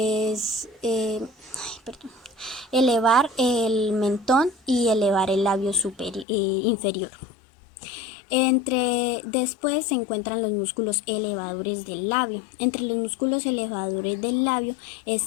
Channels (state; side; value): drops out; right; at 6.2 s